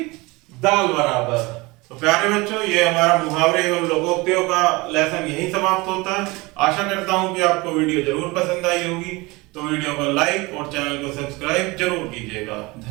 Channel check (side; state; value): left; quieter; 23.5 dB